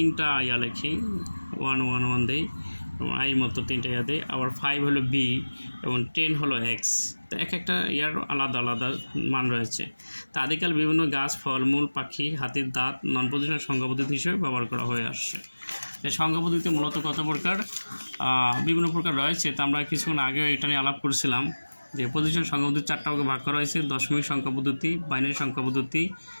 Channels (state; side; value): inverted; both; correlation -1.00